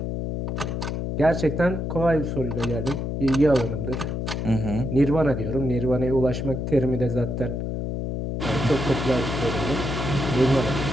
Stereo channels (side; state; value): left; noise; hum, 3 dB below the sound